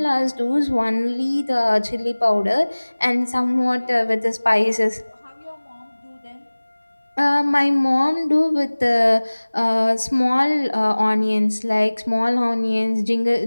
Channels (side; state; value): both; inverted; correlation -1.00